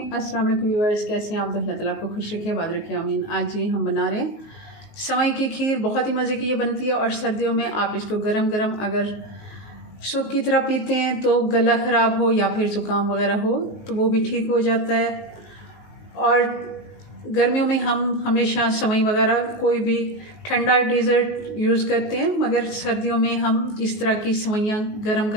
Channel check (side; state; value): right; late; 19 ms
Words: अस्सलाम वालेकुम व्यूअर्स, कैसे हैं आप? तो अल्लाह ताला आपको खुश रखे, आबाद रखे, आमीन। आज जी हम बना रहे हैं सेवई की खीर। बहुत ही मज़े की ये बनती है और सर्दियों में आप इसको गरम गरम अगर सूप की तरह पीते हैं तो गला ख़राब हो या फिर ज़ुकाम वगैरह हो तो वो भी ठीक हो जाता है। और गर्मियों में हम हमेशा सेवई वगैरह कोई भी ठंडा डेज़र्ट यूज़ करते हैं, मगर सर्दियों में हम इस तरह की सेवइयाँ गरम